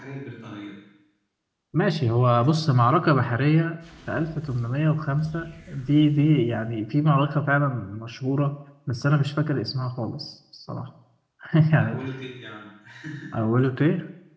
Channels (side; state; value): both; identical; correlation 1.00